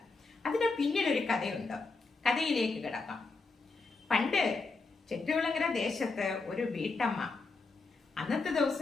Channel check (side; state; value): right; quieter; 3.9 dB